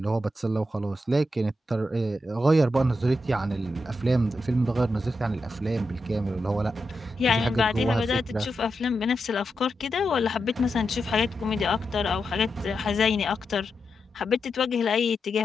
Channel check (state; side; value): normal; both; correlation 0.87